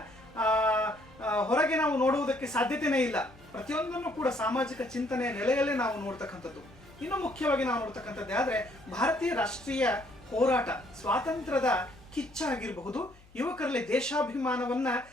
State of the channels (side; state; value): left; noise; hum, 26 dB below the sound